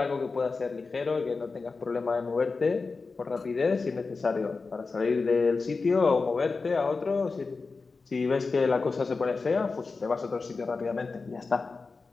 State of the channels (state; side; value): quieter; right; 4.2 dB